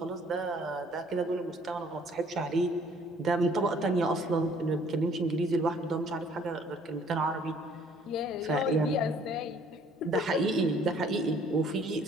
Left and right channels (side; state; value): both; normal; correlation 0.58